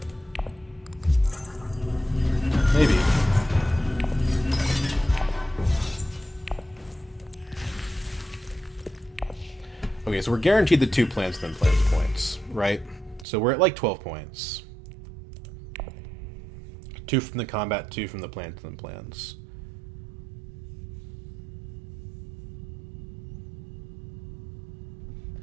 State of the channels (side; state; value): left; drops out; at 13.2 s